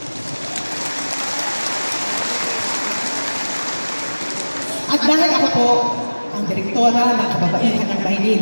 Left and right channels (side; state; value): both; inverted; correlation -1.00